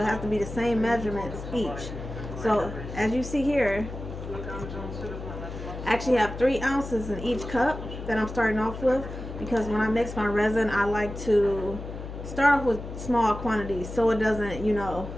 has to be the same measurements each. So as you see here, I actually have 3 ounces in each cup that I'm starting off with, because when I mix my resin, I like to start off with small quantities so it doesn't,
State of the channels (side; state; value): left; noise; hum, 9 dB below the sound